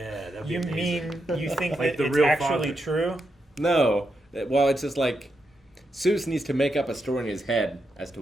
that'd be You amazing. mean you think Like that the it's real actually father. true? No. Well, it's just like Seuss needs to make up a story in his head as to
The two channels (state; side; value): normal; both; correlation 0.83